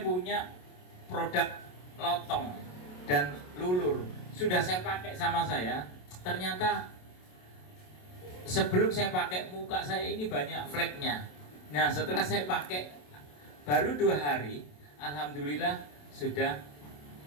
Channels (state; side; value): late; right; 27 ms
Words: produk lotong dan lulur. Sudah saya pakai sama saya. Ternyata sebelum saya pakai muka saya ini banyak fleknya. Nah, setelah saya pakai baru 2 hari, alhamdulillah sudah